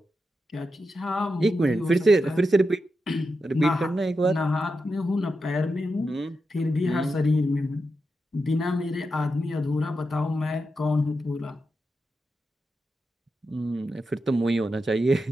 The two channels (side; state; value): both; normal; correlation 0.88